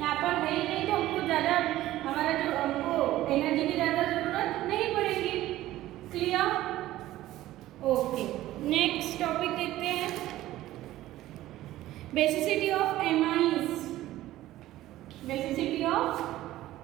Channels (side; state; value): left; quieter; 15.1 dB